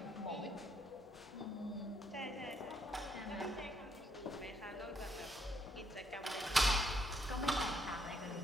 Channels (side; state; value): both; normal; correlation 0.73